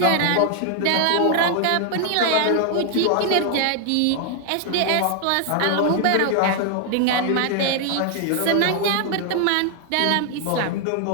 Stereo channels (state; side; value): different; both; correlation 0.00